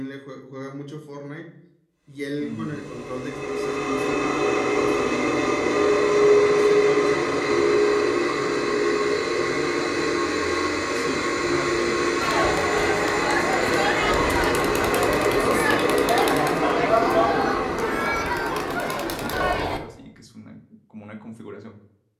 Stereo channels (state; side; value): identical; both; correlation 1.00